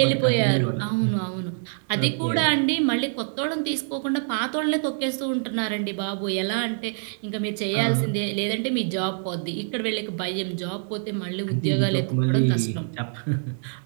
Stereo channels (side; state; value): left; silent; digital silence